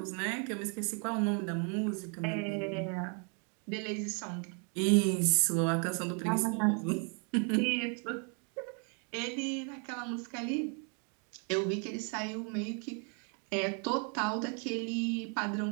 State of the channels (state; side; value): quieter; left; 39.0 dB